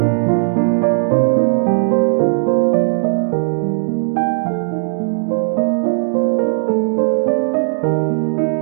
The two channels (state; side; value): silent; left; digital silence